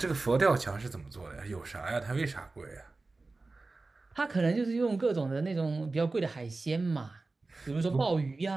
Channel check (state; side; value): quieter; left; 3.5 dB